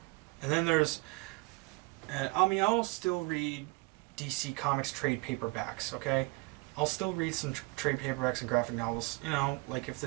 then there's, and I mean, I'll still read DC Comics trade paperbacks, okay? I'll still read some trade paperbacks and graphic novels, you know, like if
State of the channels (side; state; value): left; quieter; 27.0 dB